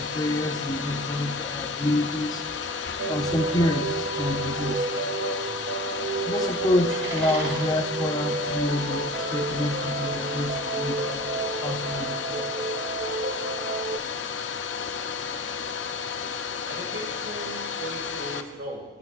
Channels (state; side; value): normal; both; correlation 0.39